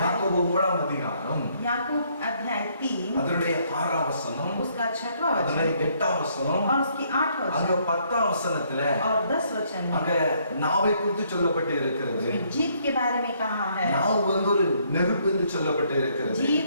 யாக்கோபு 3ஆம் அதிகாரம் याकूब अध्याय 3 அதனுடைய 6ஆம் வசனம், उसका 6वां அதனுடைய वचन 8ஆம் வசனம், और उसकी 8वां அங்க वचन 10ஆம் வசனத்துல और 10 वचन அங்க में நாவை குறித்து சொல்லப்பட்டு இருக்கிறது. जीभ के बारे में कहा है। நாவு வந்து ஒரு நெருப்பு என்று சொல்லப்பட்டு இருக்கிறது. जीभ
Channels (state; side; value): inverted; both; correlation -0.68